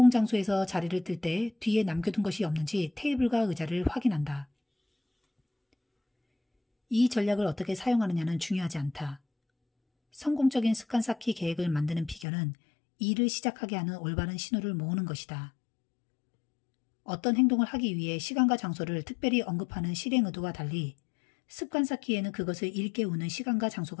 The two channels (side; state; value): right; drops out; at 12.2 s